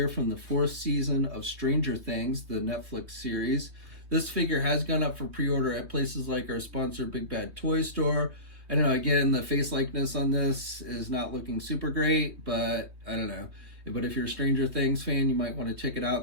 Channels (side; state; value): left; late; 3.2 ms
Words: from the 4th season of Stranger Things, the Netflix series. This figure has gone up for pre-order at places like our sponsor, Big Bad Toy Store. I don't know, again, the face likeness on this is not looking super great, but I don't know. But if you're a Stranger Things fan, you might want to check it out.